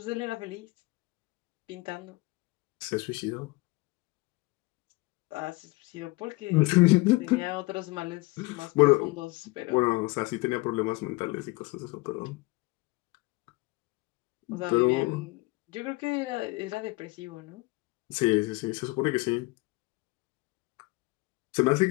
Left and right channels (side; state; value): right; quieter; 23.2 dB